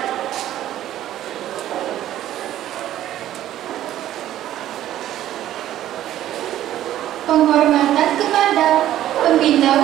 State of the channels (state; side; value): quieter; left; 12.7 dB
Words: Penghormatan kepada pembina